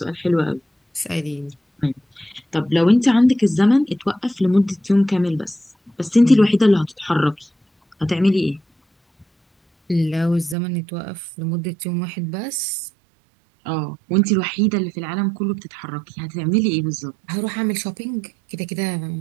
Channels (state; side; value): drops out; left; at 10.6 s